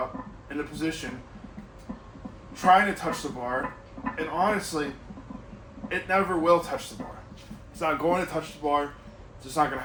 in a position, trying to touch the bar, and honestly, it never will touch the bar. It's not going to touch the bar, it's just not going to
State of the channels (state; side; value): identical; both; correlation 1.00